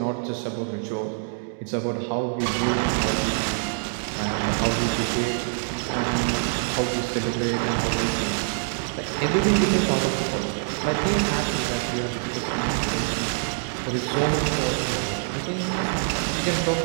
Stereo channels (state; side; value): silent; left; digital silence